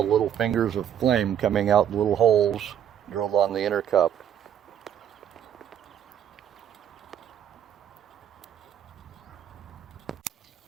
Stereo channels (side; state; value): left; quieter; 9.6 dB